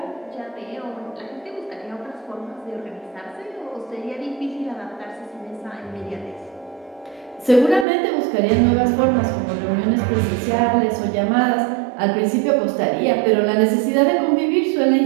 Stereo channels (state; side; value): drops out; left; at 7.9 s